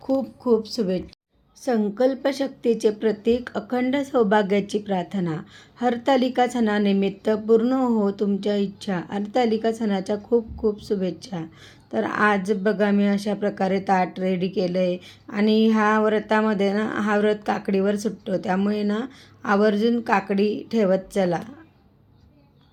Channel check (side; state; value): both; identical; correlation 1.00